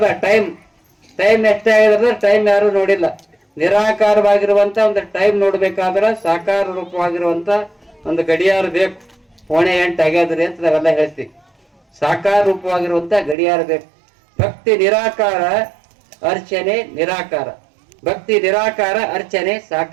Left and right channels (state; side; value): drops out; left; at 13.4 s